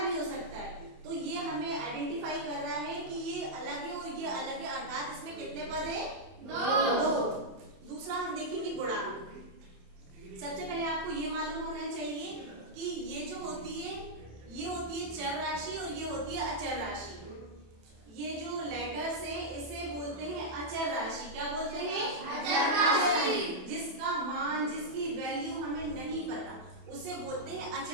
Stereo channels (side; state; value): left; late; 27 ms